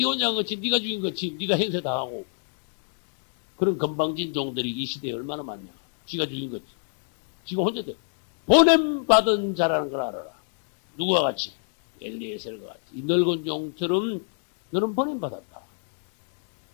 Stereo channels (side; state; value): right; silent; digital silence